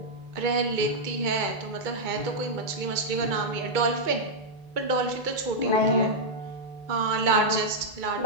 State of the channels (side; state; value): left; late; 2.2 ms